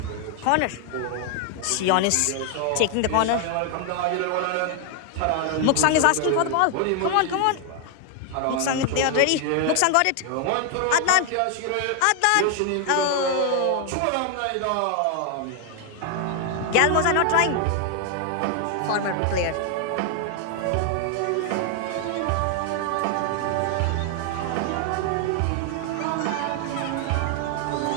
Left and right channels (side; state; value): both; different; correlation 0.00